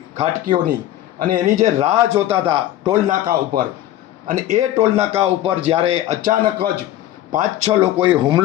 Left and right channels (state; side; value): quieter; right; 13.4 dB